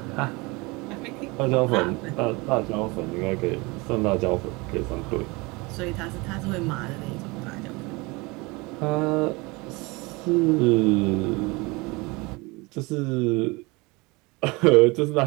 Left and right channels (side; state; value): left; quieter; 25.3 dB